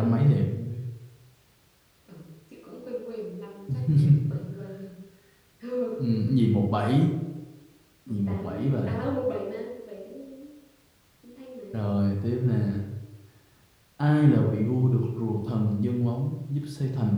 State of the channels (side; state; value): both; identical; correlation 1.00